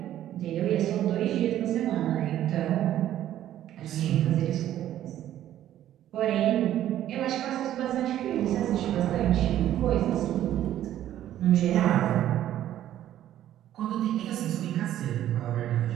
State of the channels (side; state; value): left; quieter; 12.2 dB